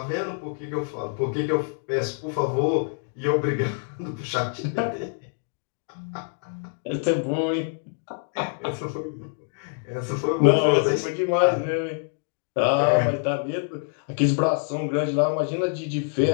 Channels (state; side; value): silent; right; 61 dB below the other